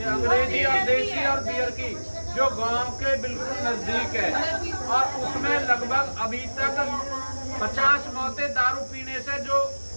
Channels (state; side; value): inverted; both; correlation -1.00